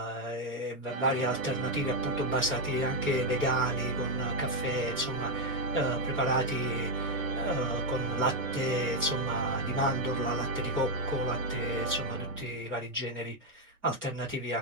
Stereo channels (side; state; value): both; normal; correlation 0.03